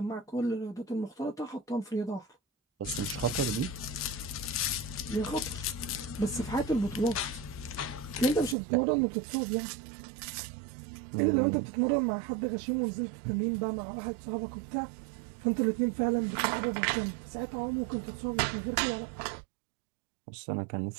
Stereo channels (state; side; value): drops out; left; at 8.6 s